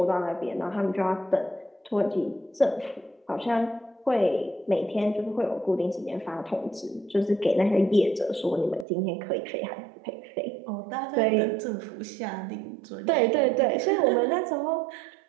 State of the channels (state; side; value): drops out; left; at 8.8 s